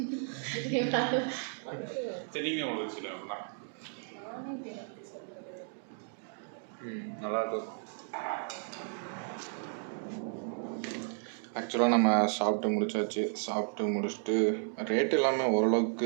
தெரியுங்க உங்களுக்கு சில நல்லா இருக்கும். ஆக்சுவலாக நம்ம சாப்பிட்டு முடிச்சாச்சு. சாப்பிட்டு முடிச்சுட்டு ரேட் எல்லாமே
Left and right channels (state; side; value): silent; left; 55 dB below the other